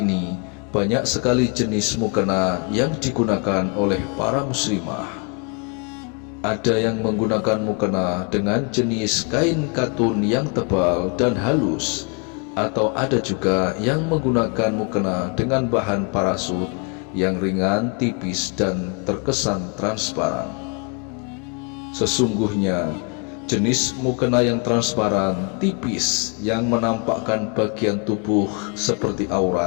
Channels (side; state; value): right; quieter; 33.4 dB